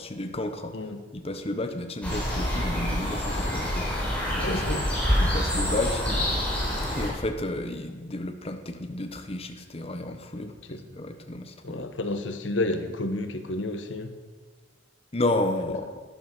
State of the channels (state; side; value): normal; both; correlation 0.53